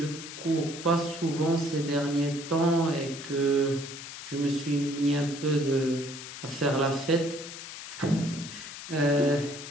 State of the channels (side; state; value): left; noise; hiss, 11 dB below the sound